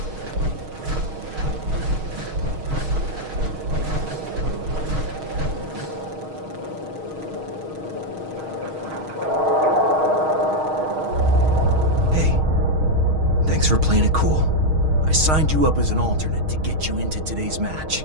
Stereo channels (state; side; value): late; left; 6.4 ms